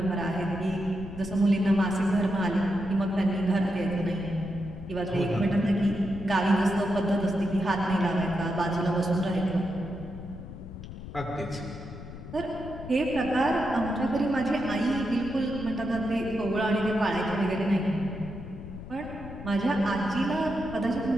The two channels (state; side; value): noise; left; rumble, 12 dB below the sound